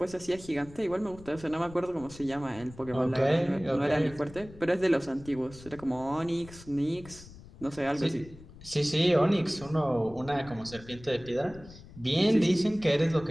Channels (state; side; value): noise; left; rumble, 19 dB below the sound